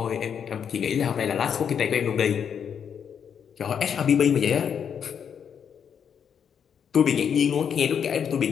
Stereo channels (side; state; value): right; quieter; 7.7 dB